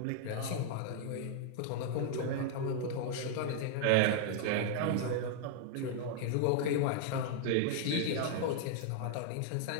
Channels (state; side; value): different; both; correlation 0.00